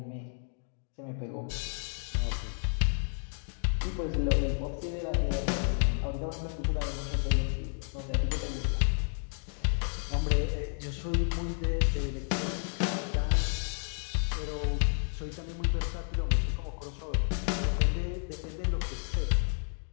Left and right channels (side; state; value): right; silent; 57 dB below the other